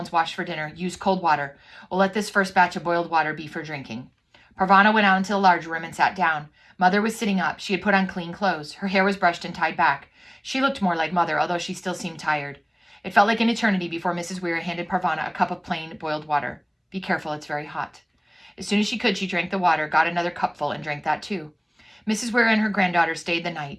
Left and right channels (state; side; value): identical; both; correlation 1.00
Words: washed for dinner? Use cold water. We'll let this first batch of boiled water be for drinking. Parvana went out into the large room and sat down. Mother was sitting up. She had put on clean clothes. Her hair was brushed and tied back. She looked more like Mother, although she still seemed tired. It felt like an eternity before Mrs. Weir handed Parvana a cup of plain boiled water. Be careful, it's very hot. As soon as she could, she drank the water, got another cupful, and drank that too. Mrs. Weir and her granddaughter stayed the